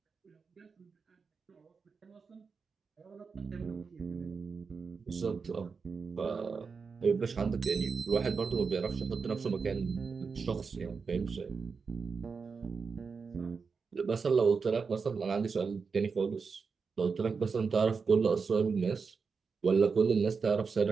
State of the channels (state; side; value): quieter; left; 5.2 dB